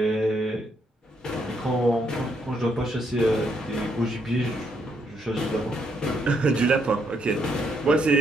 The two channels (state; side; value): normal; both; correlation 0.74